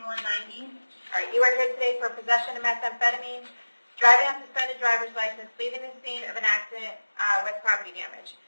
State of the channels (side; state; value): both; inverted; correlation -1.00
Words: All right, you are here today for possession of methamphetamine, driving on suspended driver's license, leaving the scene of an accident with property damage.